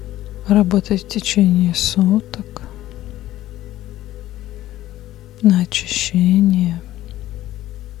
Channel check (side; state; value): right; quieter; 14.5 dB